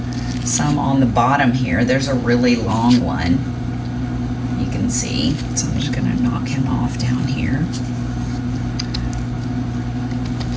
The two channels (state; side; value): identical; both; correlation 1.00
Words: some on the bottom here. There's a really long one, you can see. So I'm just gonna knock him off down here.